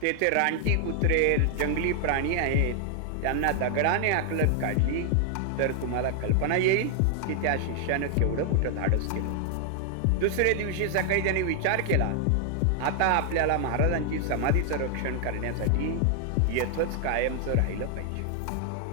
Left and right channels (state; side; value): different; both; correlation 0.00